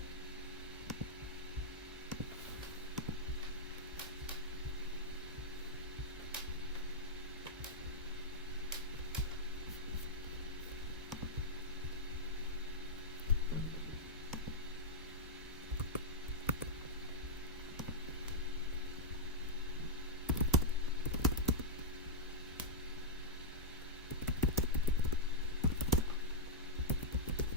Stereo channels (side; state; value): both; normal; correlation -0.05